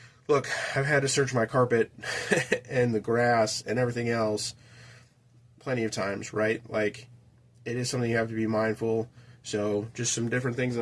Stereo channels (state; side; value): identical; both; correlation 1.00